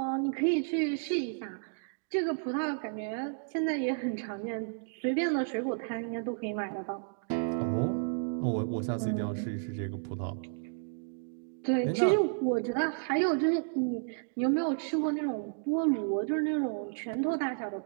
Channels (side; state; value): left; silent; digital silence